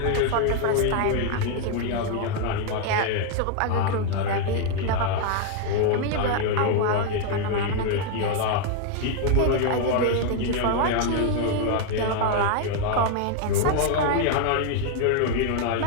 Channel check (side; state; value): both; different; correlation 0.00